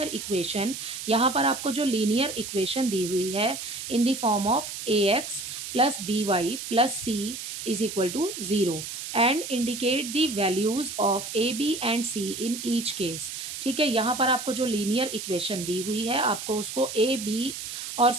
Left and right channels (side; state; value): right; noise; hiss, 8 dB below the sound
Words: equation. यहाँ पर आपको जो लीनियर इक्वेशन दी हुई है in the form of a x plus b y plus c is equal to 0 and indicate the values of a b and c in each case. ठीक है, यहाँ पर आपको जो लीनियर इक्वेशन दी हुई है आपको उसको ए बी और